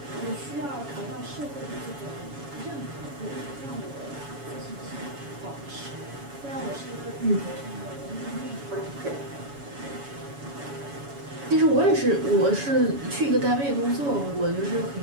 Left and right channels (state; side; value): late; left; 7.1 ms